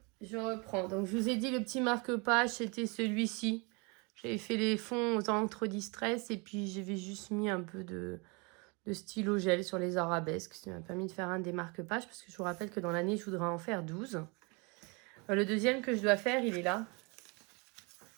je reprends. Donc, je vous ai dit, le petit marque-page, c'était celui-ci. J'avais fait les fonds aux encres distress et puis j'avais juste mis un peu de stylo gel sur les arabesques. Ça m'a permis de faire un des marque-pages parce que je vous rappelle que dans l'année, je voudrais en faire 12. Le deuxième que je dois faire, il est là.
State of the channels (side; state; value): left; quieter; 30.3 dB